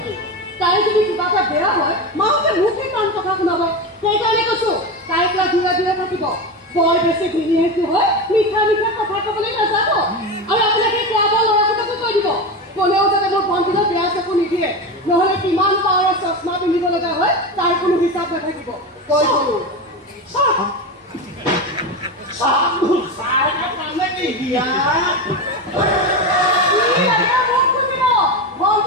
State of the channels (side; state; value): both; normal; correlation 0.20